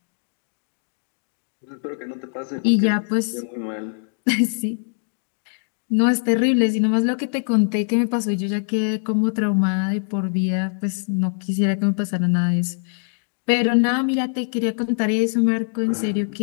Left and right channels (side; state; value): right; silent; 61 dB below the other